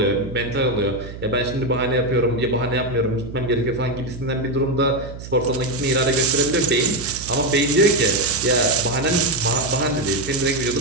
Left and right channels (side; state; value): right; noise; hum, 12 dB below the sound